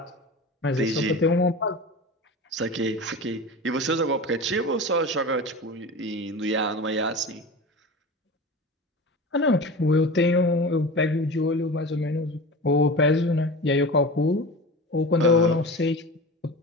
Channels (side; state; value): both; normal; correlation 0.31